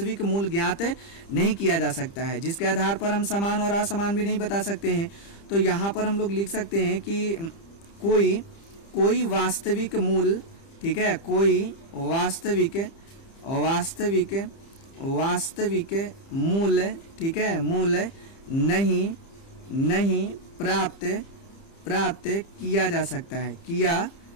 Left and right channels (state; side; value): late; right; 30 ms